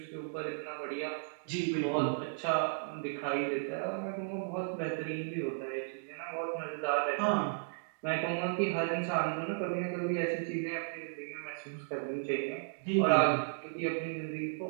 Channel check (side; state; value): left; silent; digital silence